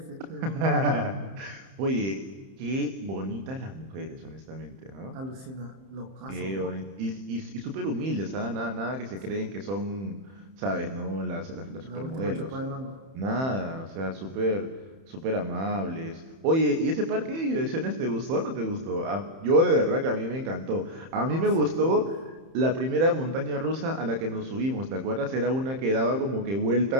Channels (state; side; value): late; left; 31 ms